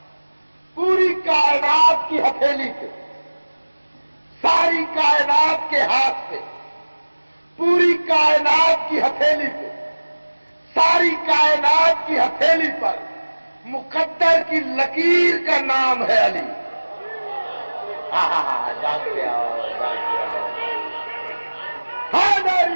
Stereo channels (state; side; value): inverted; both; correlation -1.00